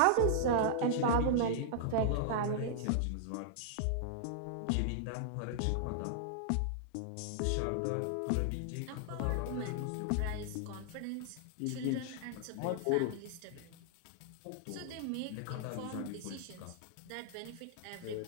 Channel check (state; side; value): different; both; correlation -0.01